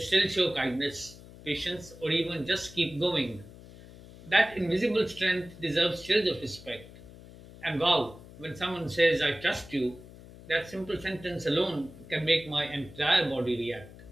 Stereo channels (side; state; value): left; noise; hum, 18 dB below the sound